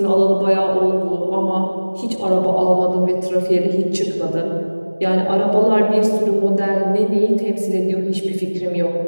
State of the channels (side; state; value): both; inverted; correlation -1.00